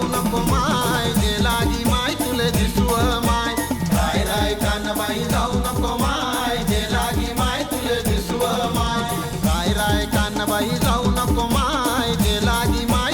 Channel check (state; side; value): identical; both; correlation 1.00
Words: नको माय, जे लागी माय तुले दिसव माय. राय राय कानबाई जाऊ नको माय, जे लागी माय तुले दिसव माय. राय राय कानबाई जाऊ नको माय, जे लागी माय